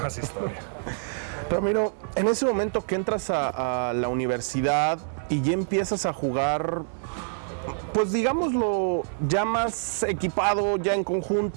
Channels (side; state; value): left; silent; 61 dB below the other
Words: historia. Ramiro, en ese momento que entras a la universidad y ya empiezas a jugar pues digámoslo, ya más equipado, ya en